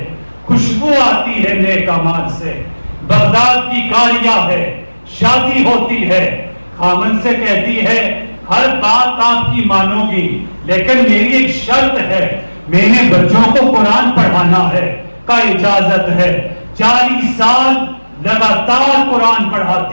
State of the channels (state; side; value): inverted; both; correlation -1.00